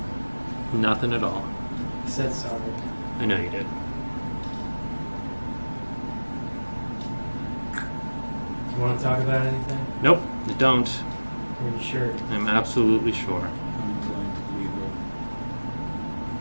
Nothing at all. I said sorry. I know you did. Do you want to talk about anything? Nope, I don't. Are you sure? I'm absolutely sure. I'm inclined to believe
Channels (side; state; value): both; inverted; correlation -1.00